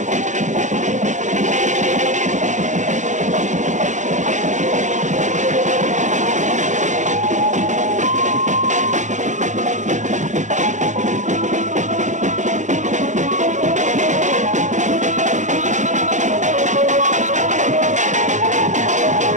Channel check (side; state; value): left; late; 0.35 ms